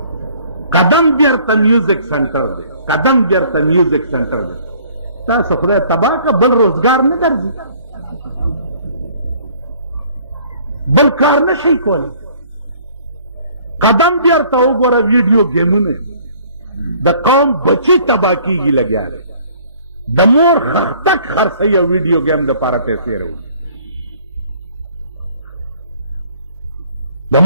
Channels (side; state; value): both; inverted; correlation -0.56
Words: قدم بیرته میوزک سنټر دی، قدم بیرته میوزک سنټر دی. تاسو خدای تباه که بل روزګار نه درځي، بل کار نه شي کولی. قدم بیرته وګوره ویډیو گیمونه د قوم بچی تباه کیږي لګیا دی، د مور خښتک خرڅوي او ویډیو گیم دپاره پیسې راوړي، د